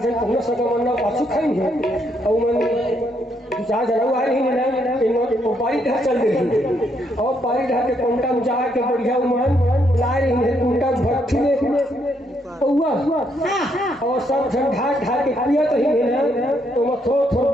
जन पुनः सगमन पाछू खाएंगे और मन दो चार जन आ रही है इन पारी ढा चल रही और पारी ढा के कोंटा में जा के बढ़िया मन ला रही है कोंटा भट्टी में हुआ और सब जन ढा के पिया तो ही है तो मैं थोड़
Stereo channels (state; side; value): normal; both; correlation 0.74